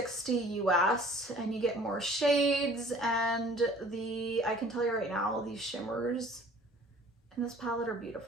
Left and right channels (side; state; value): both; normal; correlation 0.51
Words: US and you get more shades, and I can tell you right now, these shimmers in this palette are